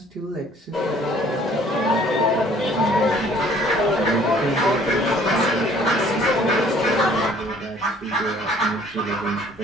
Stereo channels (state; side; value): normal; both; correlation 0.56